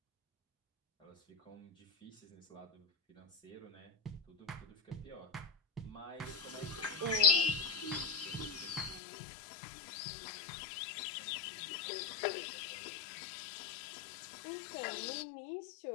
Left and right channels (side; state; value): right; drops out; at 9.0 s